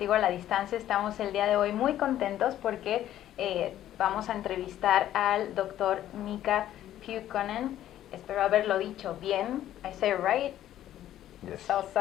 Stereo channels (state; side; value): quieter; right; 12.4 dB